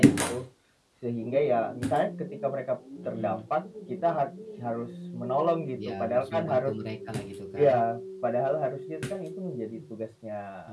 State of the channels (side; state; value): both; identical; correlation 1.00